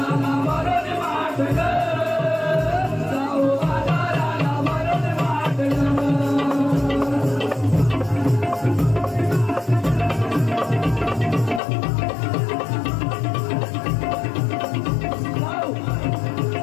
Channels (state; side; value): drops out; right; at 11.6 s